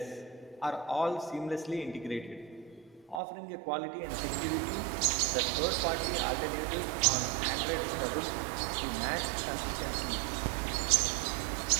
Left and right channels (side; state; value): left; drops out; at 3.2 s